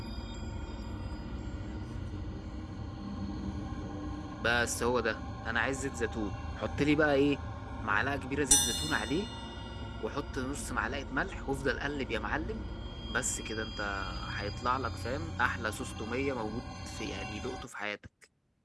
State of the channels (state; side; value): identical; both; correlation 1.00